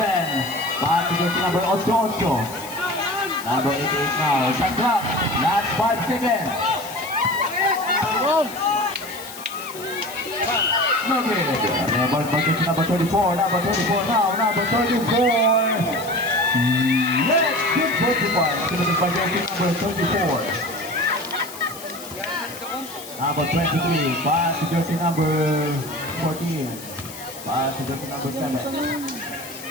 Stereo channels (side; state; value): left; noise; hiss, 14 dB below the sound